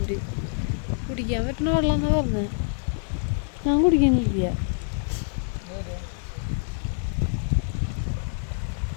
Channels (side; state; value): right; silent; digital silence